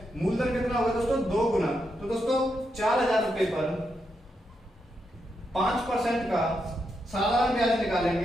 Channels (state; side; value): normal; both; correlation 0.83